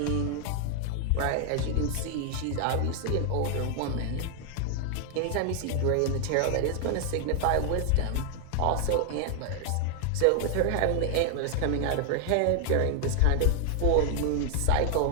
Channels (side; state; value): both; different; correlation 0.00